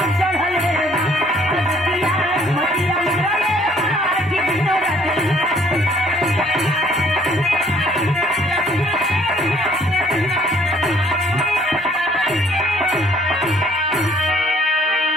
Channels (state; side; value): normal; both; correlation 0.61